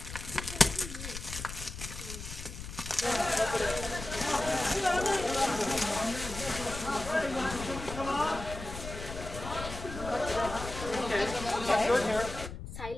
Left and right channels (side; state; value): left; noise; rumble, 9 dB below the sound